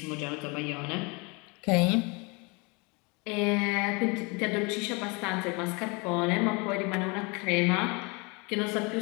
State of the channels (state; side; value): quieter; right; 29.1 dB